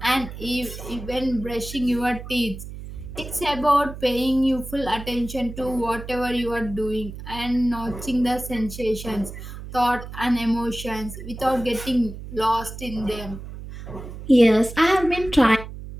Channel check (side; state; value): right; noise; hum, 11 dB below the sound